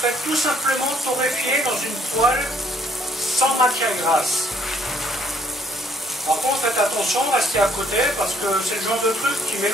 tout simplement torréfier dans une poêle sans matière grasse. Par contre, faites attention, restez à côté parce que c'est le genre de truc qui met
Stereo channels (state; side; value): normal; both; correlation 0.66